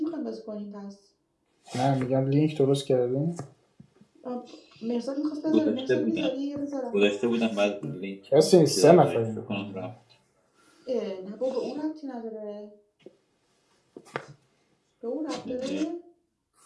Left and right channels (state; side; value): identical; both; correlation 1.00